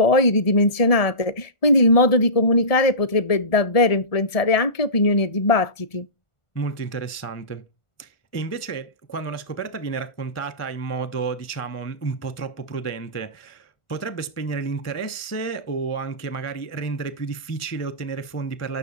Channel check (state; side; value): late; right; 1.4 ms